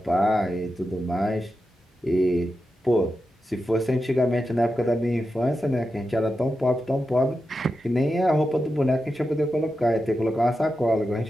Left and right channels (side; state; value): both; normal; correlation 0.90